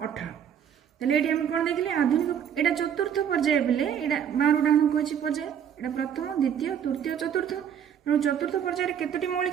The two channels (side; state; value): left; quieter; 8.7 dB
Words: 18 ताले ये कौन देखिले आधुनिक एटा चतुर्थ पर्याय बोले एटा 12 डाण को अच्छी पर्याय एटा प्रथम द्वितीय तृतीय चतुर्थ तेणु चतुर्थ पर्यायर केतोटी